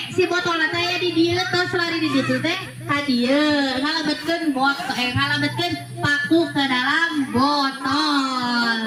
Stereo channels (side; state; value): both; identical; correlation 1.00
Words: si botol saya di dia terus lari di situ teh hadiah ngalabetkeun ngalabetkeun paku ke dalam